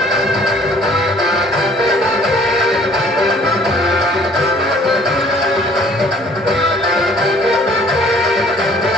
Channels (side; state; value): both; normal; correlation 0.56